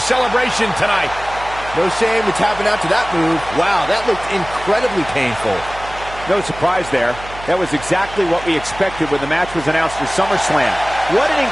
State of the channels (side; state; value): right; noise; hum, 15 dB below the sound